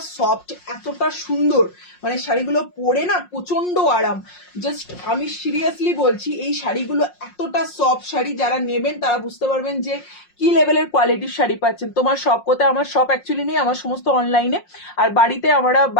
সফট, এতটা সুন্দর, মানে শাড়িগুলো পরে না প্রচন্ড আরাম। জাস্ট আমি সিরিয়াসলি বলছি, এই শাড়িগুলো এতটা সফট শাড়ি, যারা নেবেন তারা বুঝতে পারবেন যে কি লেভেলের কোয়ালিটির শাড়ি পাচ্ছেন। তোমার শপ কোথায়? আমার শপ অ্যাকচুয়ালি নেই, আমার সমস্ত অনলাইনে, আর বাড়িতে আমরা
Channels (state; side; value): late; right; 5.6 ms